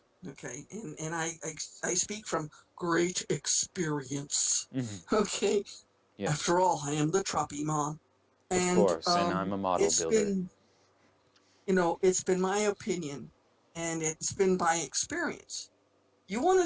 Okay, and I speak from great experience. Hmm. Okay, Yes, after all, I am the Troppy Mom, of and course, and I'm a model it's builder. been it's been my opinion, and it's been by experience. You want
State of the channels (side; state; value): both; identical; correlation 1.00